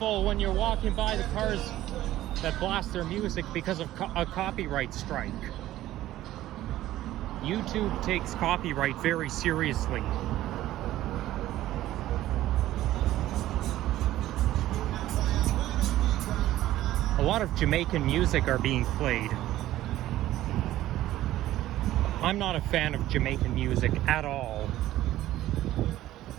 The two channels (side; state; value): left; quieter; 14.5 dB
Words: when you're walking by the cars that blast their music because of a copyright strike. YouTube takes copyright very seriously. A lot of Jamaican music are being played. I'm not a fan of Jamaican music at all.